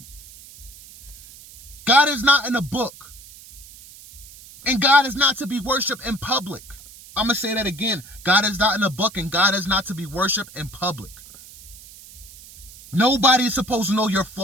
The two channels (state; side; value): noise; right; hiss, 19 dB below the sound